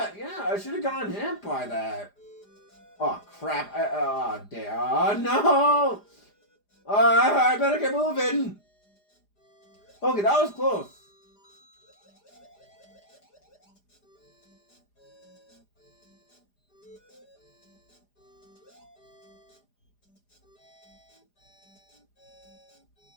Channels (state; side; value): late; right; 4.9 ms